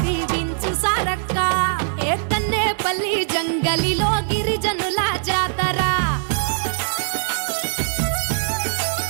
దీవించు సారక్క ఏ కన్నేపల్లి జంగలిలో గిరిజనుల జాతర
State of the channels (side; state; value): left; silent; digital silence